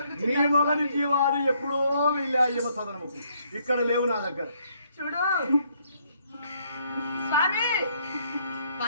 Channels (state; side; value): inverted; both; correlation -0.69